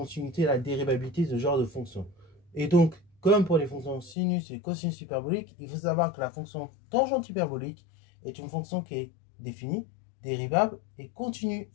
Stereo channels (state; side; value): drops out; right; at 4.2 s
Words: et à la dérivabilité de ce genre de fonction. Et donc, comme pour les fonctions sinus et cosinus hyperboliques, il faut savoir que la fonction tangente hyperbolique est une fonction qui est définie, dérivable et continue